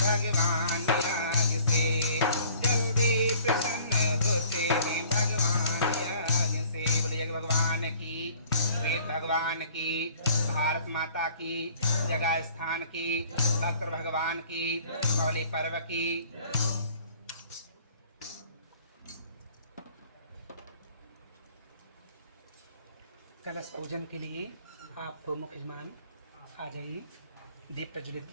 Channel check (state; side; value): inverted; both; correlation -0.53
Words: यज्ञ से, जल्दी प्रसन्न होते हैं भगवान यज्ञ से। बोले यज्ञ भगवान की, वेद भगवान की, भारत माता की, जगह स्थान की, भक्त भगवान की, कौली पर्व की। कलश पूजन के लिए आप मुख्य यजमान आ जाइए, दीप प्रज्वलित